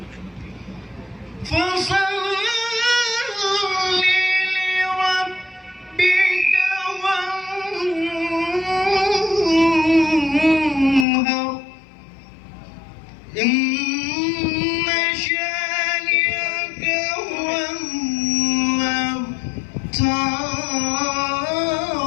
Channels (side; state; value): right; drops out; at 11.1 s